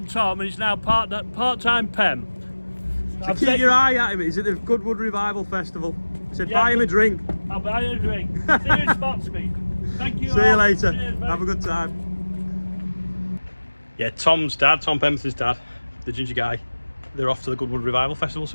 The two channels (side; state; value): both; inverted; correlation -1.00